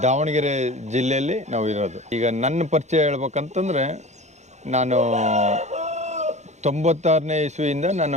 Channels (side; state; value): left; late; 0.33 ms